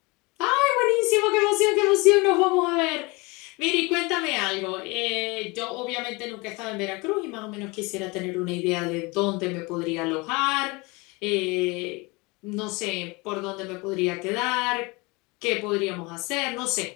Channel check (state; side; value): quieter; right; 25.9 dB